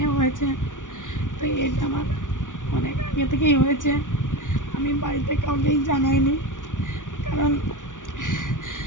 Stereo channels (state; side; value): late; right; 0.87 ms